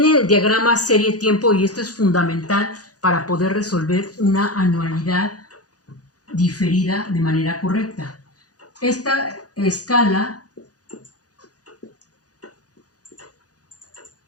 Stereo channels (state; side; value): late; right; 0.68 ms